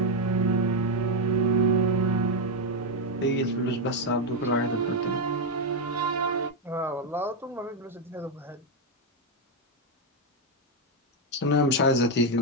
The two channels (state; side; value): normal; both; correlation 0.03